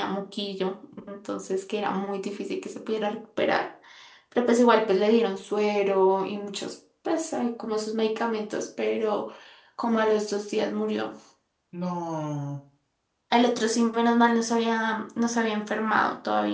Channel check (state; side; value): identical; both; correlation 1.00